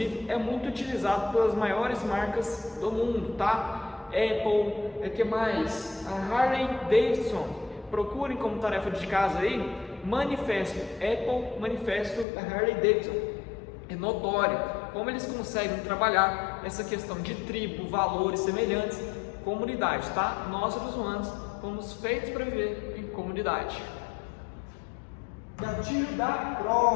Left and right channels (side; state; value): right; drops out; at 12.2 s